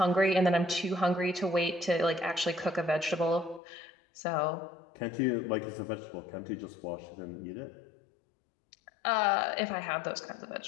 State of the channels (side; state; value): right; drops out; at 3.6 s